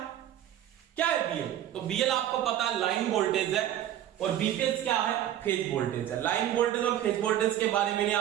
क्या है बीएल? तो बीएल आपको पता है लाइन वोल्टेज है, और बीपीएच क्या है? फेज वोल्टेज है। लाइन वोल्टेज और फेज वोल्टेज के बारे में मैंने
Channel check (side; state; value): left; quieter; 11.8 dB